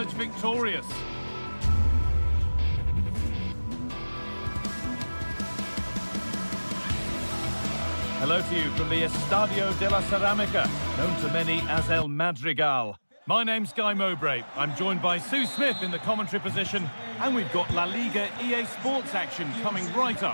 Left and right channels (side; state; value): both; inverted; correlation -1.00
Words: victorious? Hello to you from the Estadio de la Ceramica, known to many as El Madrigal. My name's Guy Mowbray. I'm joined by Sue Smith in the commentary position, and we've got La Liga EA Sports action coming right